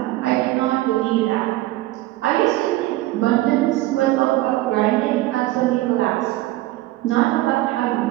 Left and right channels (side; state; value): left; quieter; 17.3 dB